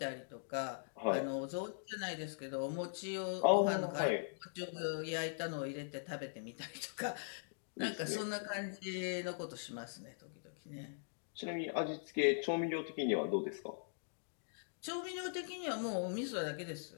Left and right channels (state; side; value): silent; right; digital silence